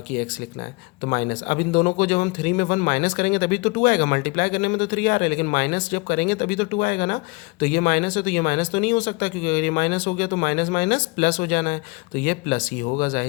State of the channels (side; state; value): right; quieter; 27.2 dB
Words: x लिखना है, तो माइनस। अब इन दोनों को जब हम 3 में 1 माइनस करेंगे तभी तो 2 आएगा, मल्टीप्लाई करने में तो 3 आ रहा है, लेकिन माइनस जब करेंगे तभी तो 2 आएगा ना। तो ये माइनस है तो ये माइनस तो नहीं हो सकता, क्योंकि अगर ये माइनस हो गया तो माइनस माइनस प्लस हो जाना है, तो ये प्लस ही होगा,